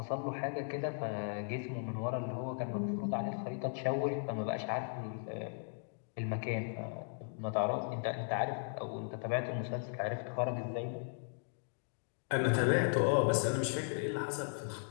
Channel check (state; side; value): silent; right; digital silence